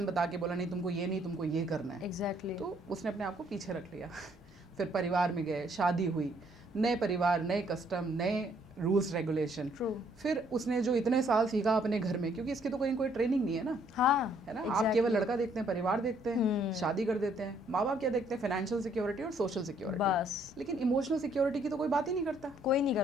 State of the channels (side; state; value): both; normal; correlation 0.66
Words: बता के बोला नहीं तुमको ये नहीं, तुमको ये करना है। Exactly. तो उसने अपने आप को पीछे रख लिया। फिर परिवार में गए, शादी हुई, नए परिवार, नए कस्टम, नए रूल्स रेगुलेशन। फिर उसने जो इतने साल सीखा अपने घर में, क्योंकि इसकी तो कोई ट्रेनिंग नहीं है ना। हाँ, है ना। आप केवल लड़का देखते हैं, परिवार देखते हैं, शादी कर देते हैं। माँ बाप क्या देखते हैं? फाइनेंशियल सिक्योरिटी और सोशल सिक्योरिटी, बस। लेकिन इमोशनल सिक्योरिटी की तो कोई बात ही नहीं करता। कोई नहीं